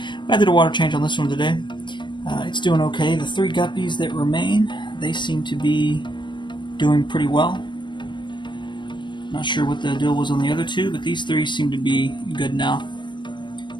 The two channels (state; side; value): late; right; 0.22 ms